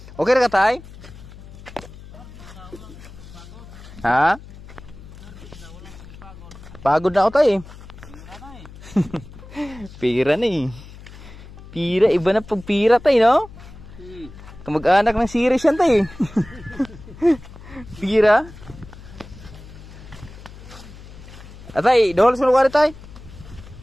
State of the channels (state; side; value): noise; left; hum, 17 dB below the sound